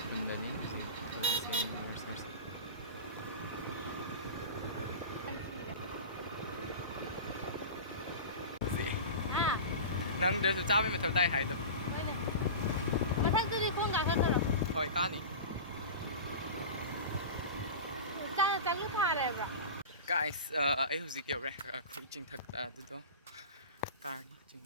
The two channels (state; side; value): inverted; both; correlation -0.30